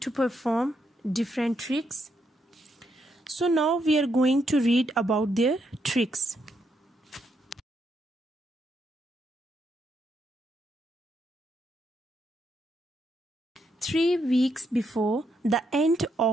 perform different tricks. So now we are going to read about their tricks. Three weeks before the end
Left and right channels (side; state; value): both; normal; correlation 0.78